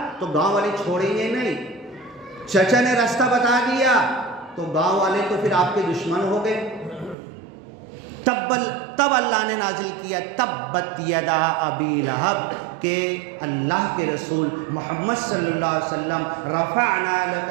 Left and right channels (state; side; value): drops out; left; at 7.2 s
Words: تو گاؤں والے چھوڑیں گے نہیں، چچا نے راستہ بتا دیا تو گاؤں والے تو پھر آپ کے دشمن ہو گئے۔ تب اللہ نے نازل کیا تبت یدا ابی لہب، کہ اللہ کے رسول محمد صلی اللہ علیہ وسلم رفعنا لک